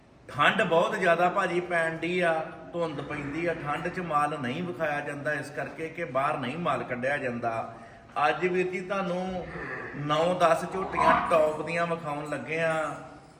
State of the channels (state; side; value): identical; both; correlation 1.00